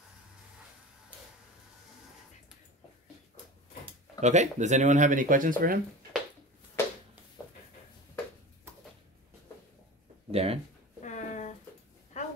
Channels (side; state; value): both; normal; correlation 0.32